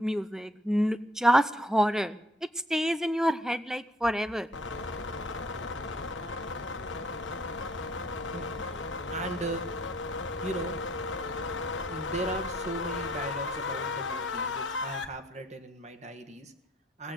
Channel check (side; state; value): both; normal; correlation 0.63